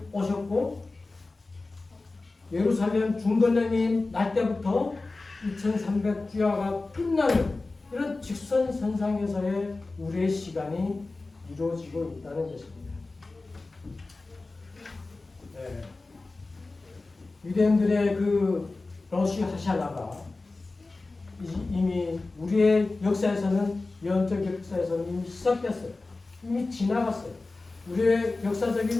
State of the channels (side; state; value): right; quieter; 3.4 dB